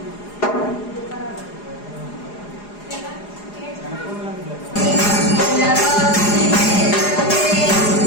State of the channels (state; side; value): late; right; 4.8 ms